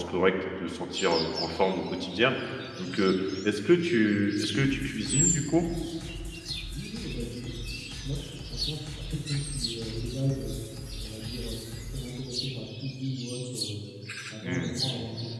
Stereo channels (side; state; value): both; identical; correlation 1.00